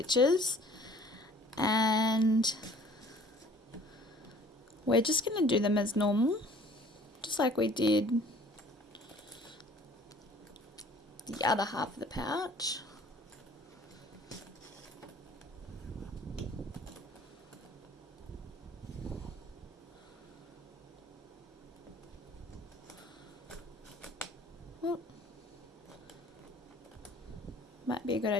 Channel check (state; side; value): normal; both; correlation 0.52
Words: and we're just going to do them as normal, just like we did the other half of the pouch. Well, might be a good